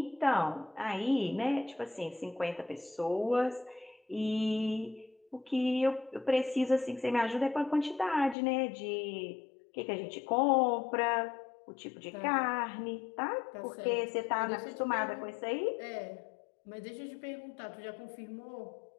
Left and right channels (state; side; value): drops out; right; at 8.3 s